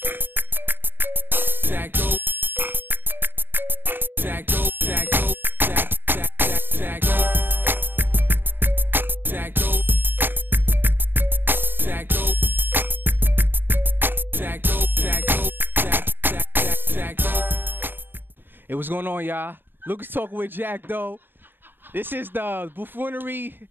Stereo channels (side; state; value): left; late; 0.096 ms